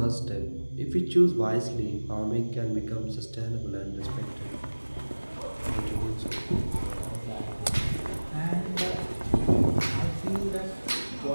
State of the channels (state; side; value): inverted; both; correlation -1.00